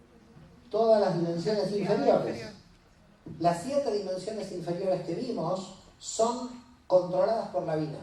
Todas las dimensiones inferiores. Las 7 dimensiones inferiores que vimos son controladas por la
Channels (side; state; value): both; identical; correlation 1.00